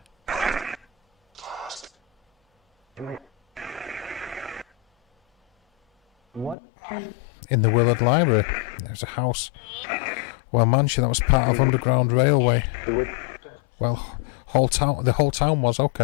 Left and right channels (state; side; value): drops out; right; at 6.6 s